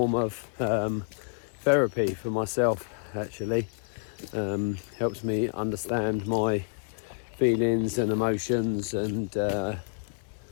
of therapy for myself. Actually helps me understand my feelings and emotions, and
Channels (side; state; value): right; silent; 59 dB below the other